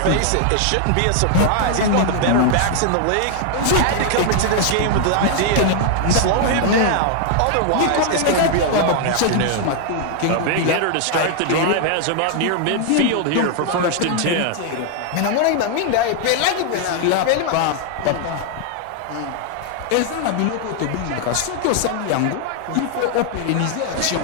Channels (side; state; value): both; different; correlation 0.00